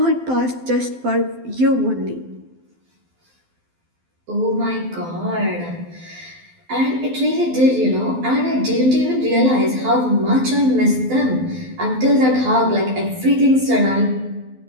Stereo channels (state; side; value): late; left; 12 ms